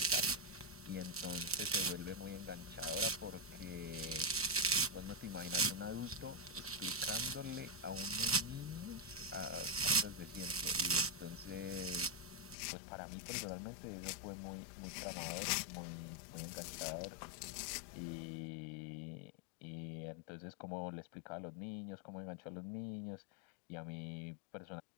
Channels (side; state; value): right; drops out; at 12.6 s